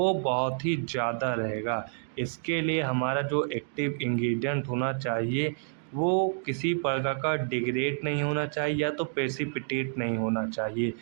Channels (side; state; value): left; silent; digital silence